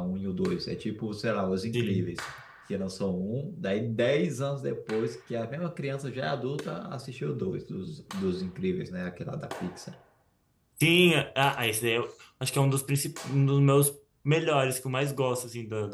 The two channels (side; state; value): both; identical; correlation 1.00